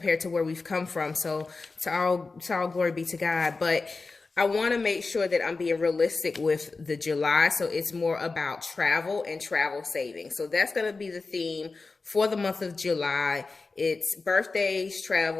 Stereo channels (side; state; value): right; quieter; 3.9 dB